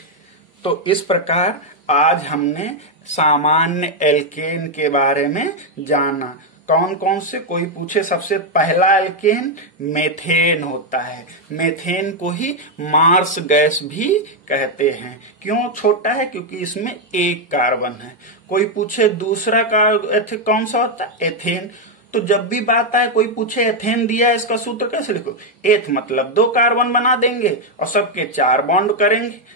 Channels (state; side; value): normal; both; correlation 0.01